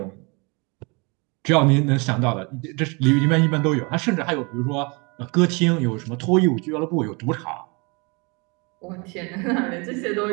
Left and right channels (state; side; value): quieter; left; 29.9 dB